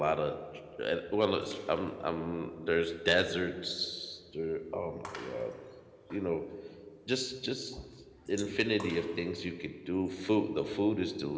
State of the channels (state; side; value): identical; both; correlation 1.00